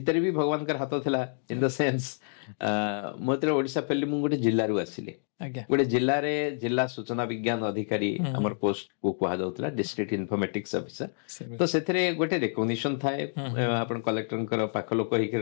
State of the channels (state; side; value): silent; right; digital silence